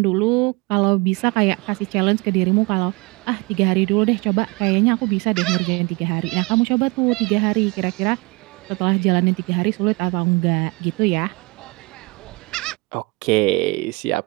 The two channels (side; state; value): left; quieter; 25.8 dB